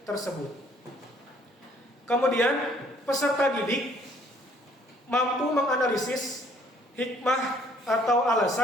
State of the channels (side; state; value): both; normal; correlation 0.61